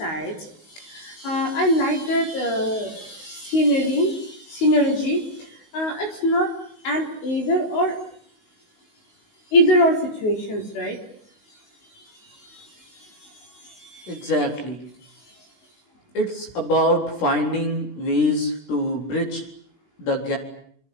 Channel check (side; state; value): right; late; 19 ms